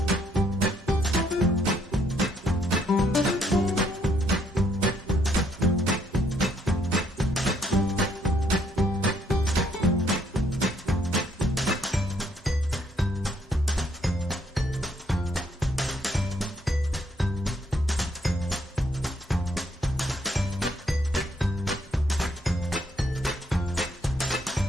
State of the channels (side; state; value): both; normal; correlation 0.70